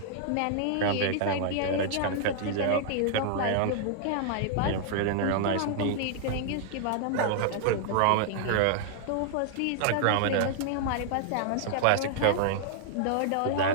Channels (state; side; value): different; both; correlation -0.01